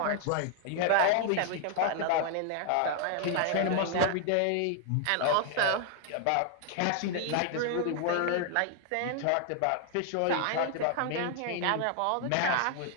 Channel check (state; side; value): different; both; correlation 0.00